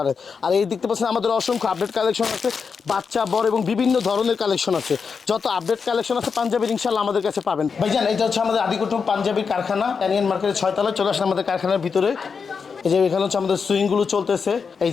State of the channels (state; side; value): quieter; right; 5.7 dB